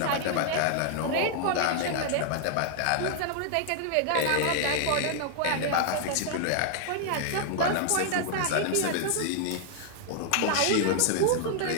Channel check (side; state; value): both; different; correlation 0.00